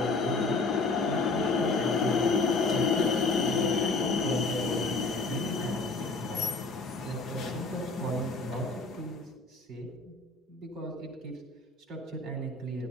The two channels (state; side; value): quieter; right; 3.5 dB